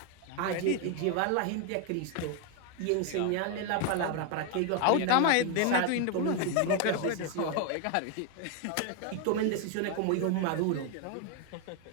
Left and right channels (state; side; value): different; both; correlation 0.01